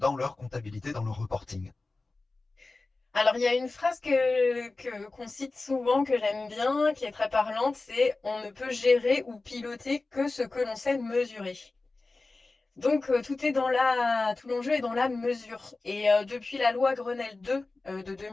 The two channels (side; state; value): right; quieter; 3.4 dB